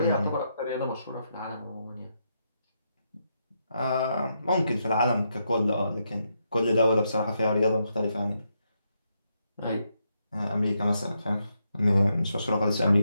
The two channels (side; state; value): both; inverted; correlation -0.81